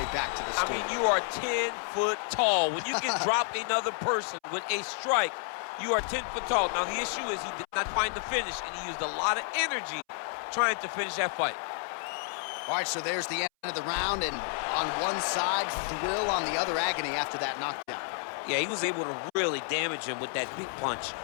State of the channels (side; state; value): right; silent; 58 dB below the other